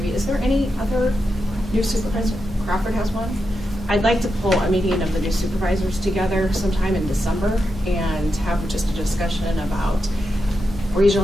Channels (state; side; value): normal; both; correlation 0.87